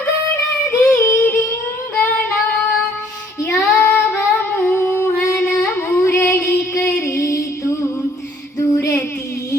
ರಿಂಗಣ, ಯಾವ ಮೋಹನ ಮುರಳಿ ಕರೆಯಿತು ದೂರ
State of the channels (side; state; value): both; normal; correlation 0.61